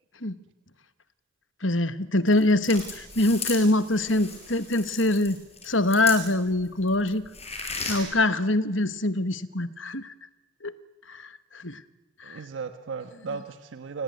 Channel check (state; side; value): normal; both; correlation 0.46